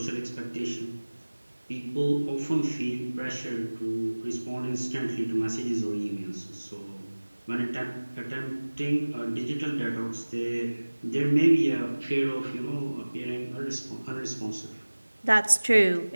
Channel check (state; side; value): inverted; both; correlation -1.00